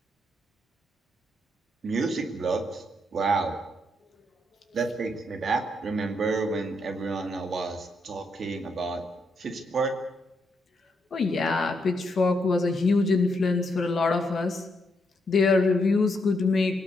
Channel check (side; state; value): both; normal; correlation 0.78